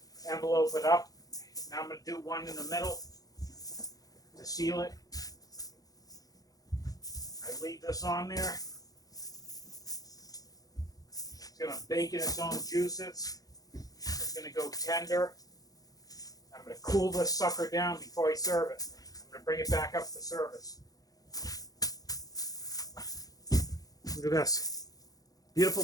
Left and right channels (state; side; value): late; right; 0.18 ms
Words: Envelope it up. Now I'm going to do one in the middle to seal it. I leave this on there. It's going to bake in its own juices. It's going to go tender. I'm going to cool this sucker down before I serve it. I'm going to bring it back up to service. Look at this. Beautiful